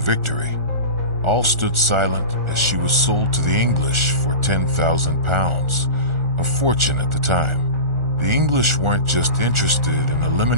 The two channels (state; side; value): late; left; 1.4 ms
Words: victory. All stood silent as she was sold to the English for £10,000, a fortune at the time. The English weren't just interested in